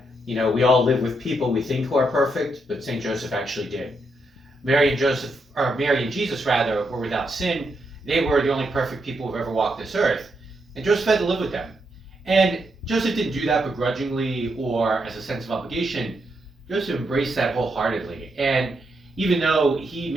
you know, we all live with people we think who are perfect, but St. Joseph actually did. Mary and Jesus rather, were without sin. They were the only perfect people who've ever walked this earth. And Joseph had to live with them. And Joseph didn't do that begrudgingly or as a sense of obligation. Joseph embraced that wholeheartedly. And even though he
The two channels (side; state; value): both; normal; correlation 0.80